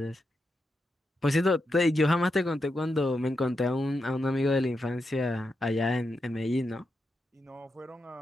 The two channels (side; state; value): both; normal; correlation 0.86